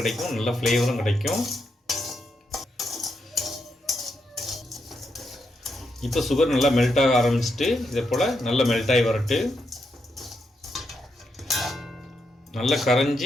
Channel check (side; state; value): both; normal; correlation 0.82